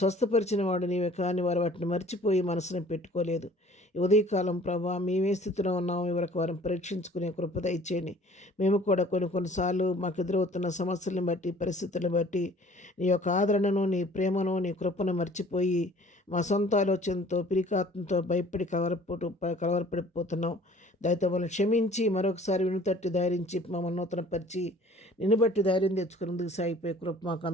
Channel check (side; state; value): both; normal; correlation 0.52